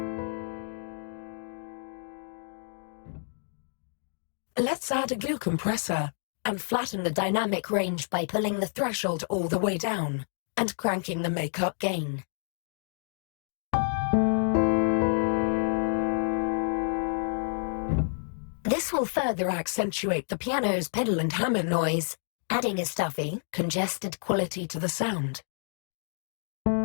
Let's add a glue compressor and flatten the dynamic range by pulling the threshold all the way down and cranking the makeup gain. This will further accentuate the piano's pedal and hammer noise, adding a stuffy, congested quality to the sound.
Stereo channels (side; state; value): right; silent; digital silence